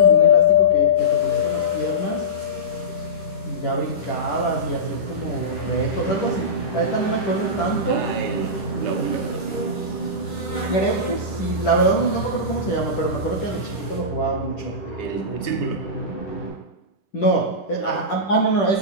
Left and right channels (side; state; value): right; late; 10 ms